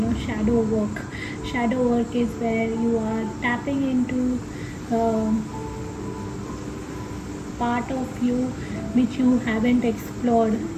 shadow work. Shadow work is where you are tapping into part of you which you haven't explored.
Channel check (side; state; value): both; identical; correlation 1.00